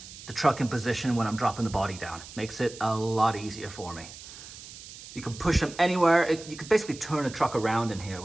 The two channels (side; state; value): right; noise; hiss, 15 dB below the sound